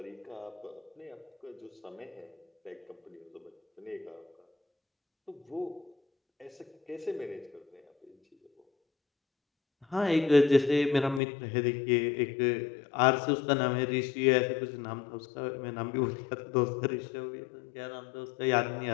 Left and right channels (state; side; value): drops out; right; at 11.2 s